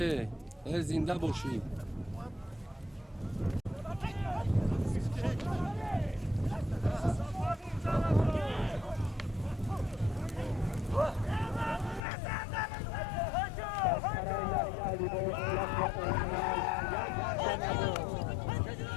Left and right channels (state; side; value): drops out; right; at 12.0 s